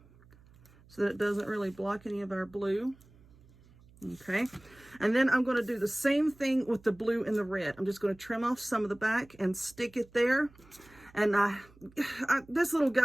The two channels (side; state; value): right; noise; hum, 26 dB below the sound